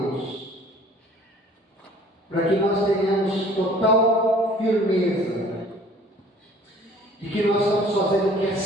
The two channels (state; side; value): normal; both; correlation 0.52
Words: para que nós tenhamos total firmeza de que nós estamos fazendo o que é